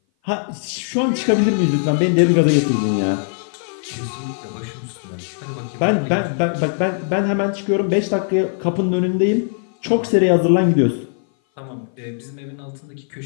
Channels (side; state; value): right; silent; 58 dB below the other